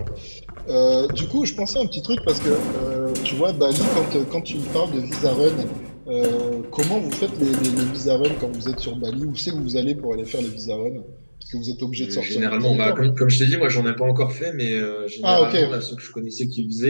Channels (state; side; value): inverted; both; correlation -1.00